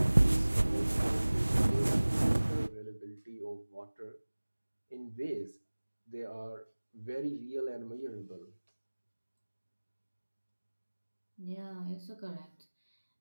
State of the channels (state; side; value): inverted; both; correlation -1.00